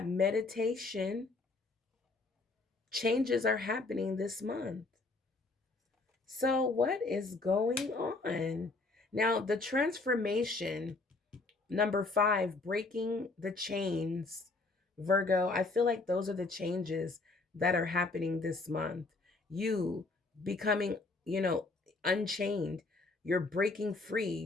meditation. Changes are happening this month. So what is going on? Now, the transformation, number 5, breaking the chains. Virgo, I feel like those are the changes that are happening this month. You becoming, unchained. You're breaking free.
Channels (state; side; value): quieter; right; 3.5 dB